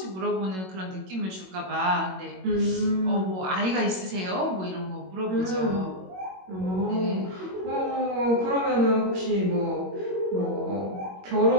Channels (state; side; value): late; left; 21 ms